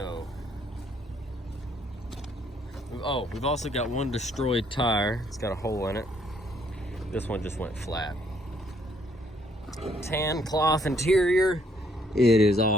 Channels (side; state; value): both; normal; correlation 0.68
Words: we've also got one destroyed tire. It's got a hole in it. This one just went flat. Tan cloth interior. It is